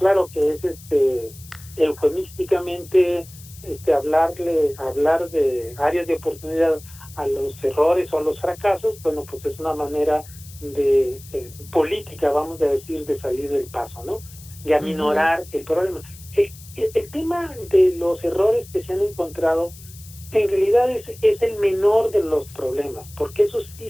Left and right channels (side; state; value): left; noise; hiss, 20 dB below the sound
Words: que es eufemísticamente hablar de áreas de oportunidad a los errores o a los fracasos. Bueno, pues es una manera de política, vamos a decir, de salir del paso, ¿no? De aminorar el problema. El tema de los errores que se han encontrado en realidad es el menor de los problemas, porque esos sí